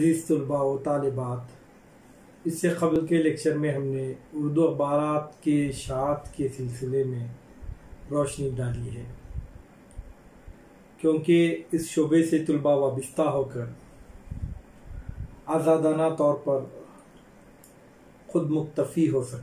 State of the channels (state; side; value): identical; both; correlation 1.00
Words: तलबा व तालिबात। इससे क़बल के लेक्चर में हमने उर्दू अखबारात के शात के सिलसिले में रोशनी डाली है, क्योंकि इस शोबे से तलबा वाबस्ता होकर आज़ादाना तौर पर ख़ुद मुक्तफ़ी हो